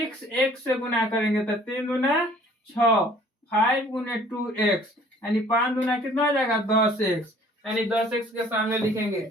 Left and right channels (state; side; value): normal; both; correlation 0.54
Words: से गुना करेंगे तो 3 दूना 6, 5 गुने 2x यानी 5 दूना कितना हो जाएगा, 10x, यानी 10x के सामने लिखेंगे।